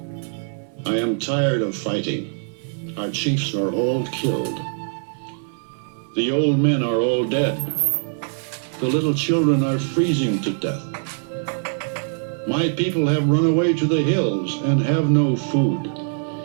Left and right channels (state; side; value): silent; left; digital silence